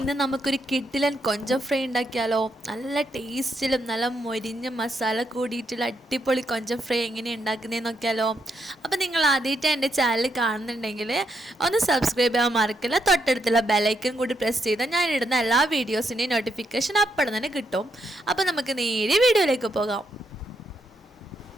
നമുക്കൊരു കിഡിലൻ കൊഞ്ചം ഫ്രൈ ഉണ്ടാക്കിയാലോ. നല്ല ടേസ്റ്റിലും നല്ല മൊരിഞ്ഞ മസാല കൂടിയിട്ടുള്ള അടിപൊളി കൊഞ്ചം ഫ്രൈ എങ്ങനെ ഉണ്ടാക്കുന്നതെന്ന് നോക്കിയാലോ. അപ്പോൾ നിങ്ങൾ ആദ്യമായിട്ട് എൻ്റെ ചാനൽ കാണുന്നുണ്ടെങ്കിൽ ഒന്ന് സബ്സ്ക്രൈബ് ചെയ്യാൻ മറക്കില്ല. തൊട്ടടുത്തുള്ള ബെലൈക്കൺ കൂടി പ്രസ് ചെയ്താൽ ഞാനിടുന്ന എല്ലാ വീഡിയോസിൻ്റെയും നോട്ടിഫിക്കേഷൻ അപ്പോൾ തന്നെ കിട്ടും. അപ്പോൾ നമുക്ക് നേരെ വീഡിയോയിലേക്ക് പോകാം.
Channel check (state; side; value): normal; both; correlation 0.79